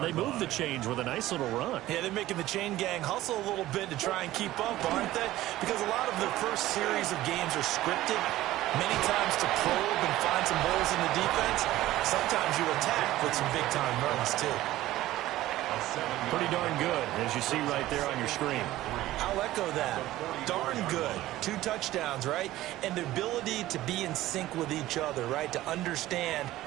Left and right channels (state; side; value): quieter; left; 15.6 dB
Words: They move the chains with a nice little run. Yeah, they're making the chain gang hustle a little bit to try and keep up, aren't they? Because a lot of the first series of games are scripted, many times to probe and find some holes in the defense. Sometimes you attack with some big-time runs, too. Pretty darn good, as you see right there on your screen. I'll echo that. Darn good. 2 touchdowns, right? And the ability to be in sync with each other, right? To understand